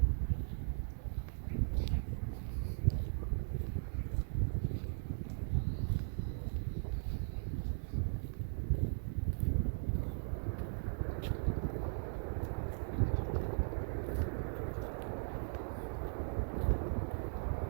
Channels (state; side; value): silent; left; digital silence